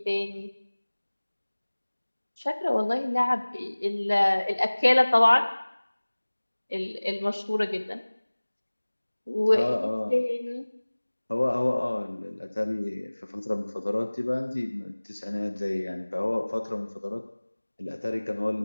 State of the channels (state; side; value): inverted; both; correlation -1.00